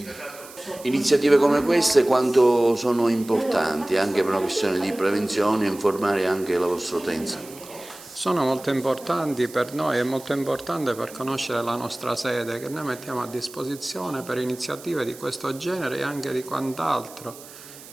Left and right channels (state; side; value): noise; right; hiss, 18 dB below the sound